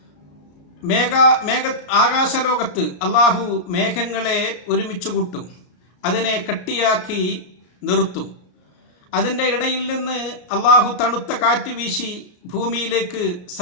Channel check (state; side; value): late; right; 34 ms